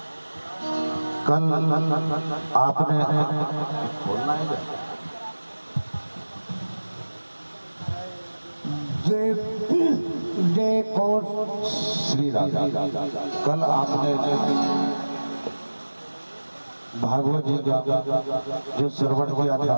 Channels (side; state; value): both; inverted; correlation -1.00